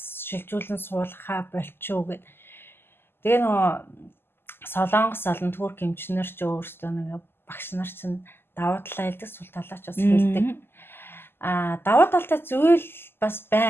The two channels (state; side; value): late; right; 0.11 ms